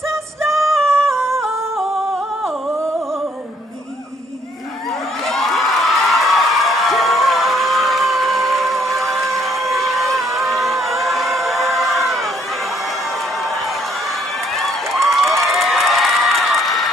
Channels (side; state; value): both; normal; correlation 0.67